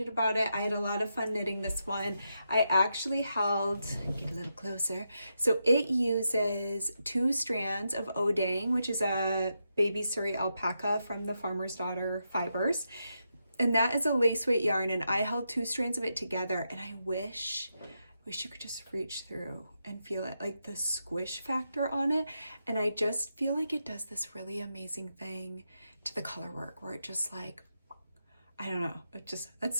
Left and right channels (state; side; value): inverted; both; correlation -0.85